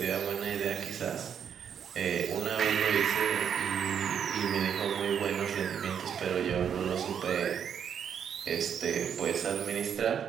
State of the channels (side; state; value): left; quieter; 8.1 dB